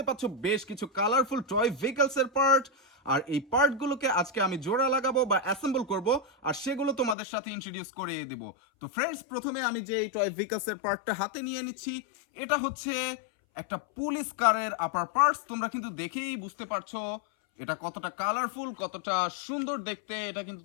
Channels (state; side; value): drops out; right; at 7.2 s